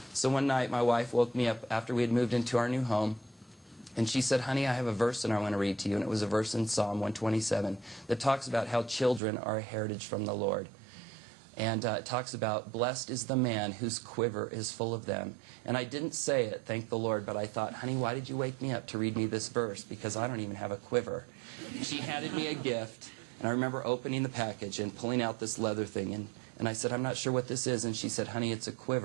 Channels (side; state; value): left; drops out; at 9.2 s